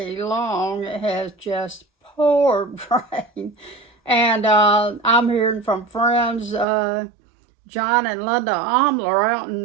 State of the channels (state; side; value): drops out; left; at 6.7 s